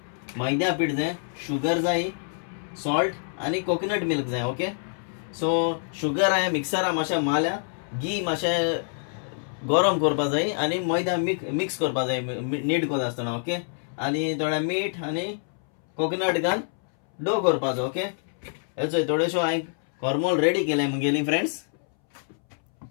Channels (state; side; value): silent; right; 61 dB below the other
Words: मैद्या पीठ जाय, शुगर जाय, सॉल्ट आनी कोकोनट मिल्क जाय. ओके, सो शुगर हांवें मिक्सरा मातशें मारल्या, घी मातशें गरम करपा जाय आनी मैदा मिक्स करपा जाय नीट कोता आसतना. ओके, आनी थोडें मीठ आनी कोकोनट घाल डो करपाचो. ओके, हेचो थोडेशो हांवें कोरमोल रेडी केले मुगेली फ्रेंड्स.